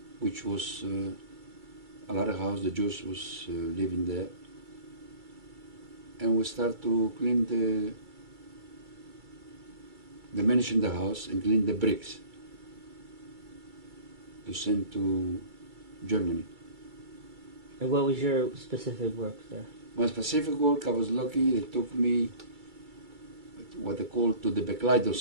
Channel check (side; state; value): left; late; 2.3 ms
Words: which was a lot of houses, the Jews was living there. And we start to clean the manage in the house and clean the bricks to send to Germany. And what was your specific work there? My specific work, I was lucky, they took me what they call to the